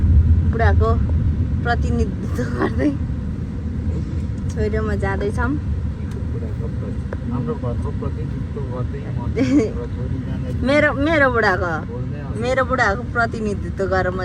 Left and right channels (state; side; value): identical; both; correlation 1.00